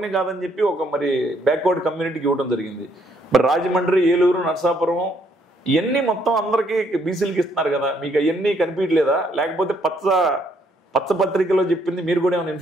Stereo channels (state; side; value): normal; both; correlation 0.69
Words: కాదని చెప్పి ఒక మరి బ్యాక్వర్డ్ కమ్యూనిటీకి ఇవ్వడం జరిగింది. మరి రాజమండ్రి, ఏలూరు, నరసాపురం ఇవన్నీ మొత్తం అందరికీ బీసీలకి ఇస్తున్నారు కదా, మీకు అవన్నీ కనిపించలేదా? లేకపోతే పచ్చ పత్రికలో చెప్పింది మీరు కూడా ఏమైనా